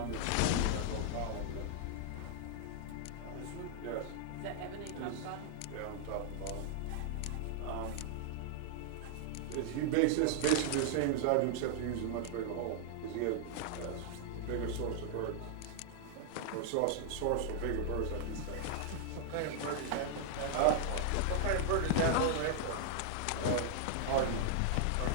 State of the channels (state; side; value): different; both; correlation -0.01